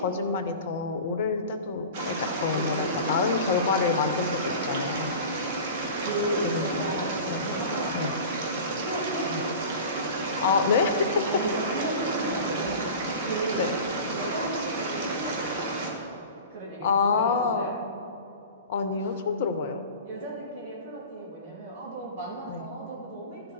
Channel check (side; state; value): both; inverted; correlation -0.35